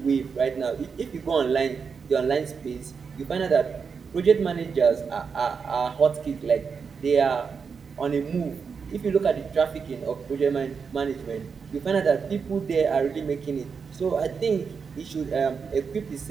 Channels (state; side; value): quieter; left; 5.8 dB